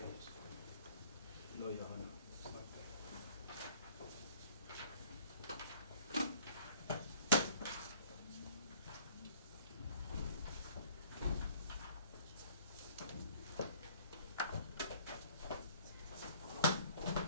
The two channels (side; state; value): both; inverted; correlation -0.54